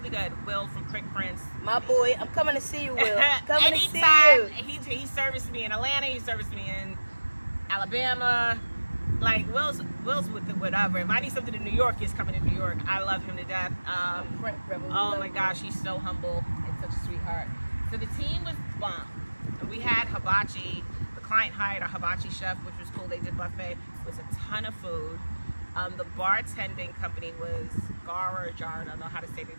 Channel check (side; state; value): both; inverted; correlation -1.00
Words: good. Will from Quick Prints. My boy, I'm coming to see you, Will. Coming to see Anytime. you. He serviced me in Atlanta. He serviced me in Alabama. Like, Will's with the whatever. If I need something in New York, he's coming to New York. I love him to death. Oh my gosh, he's so humble and such a sweetheart. So the team was bomb. And we had hibachi. The client hired a hibachi chef, which was cool. They did buffet. It was a ton of food. The bartending company was Gara Jar. I don't know how to say their